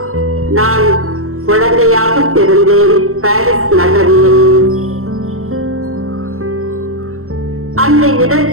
நான் குழந்தையாக பிறந்தேன் பாரிஸ் நகரில். அந்த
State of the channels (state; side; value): late; left; 0.63 ms